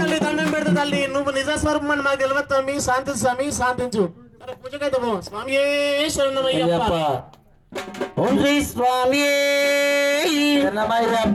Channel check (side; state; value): both; identical; correlation 1.00